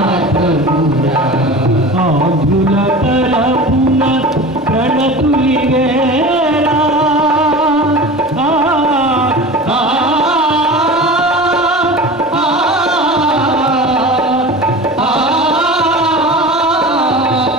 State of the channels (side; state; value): both; normal; correlation 0.34